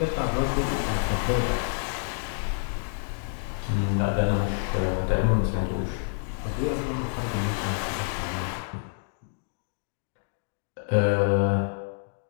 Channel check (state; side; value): silent; right; digital silence